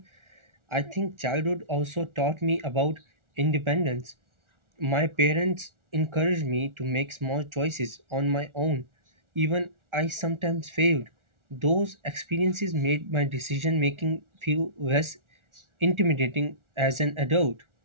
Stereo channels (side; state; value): left; late; 1.4 ms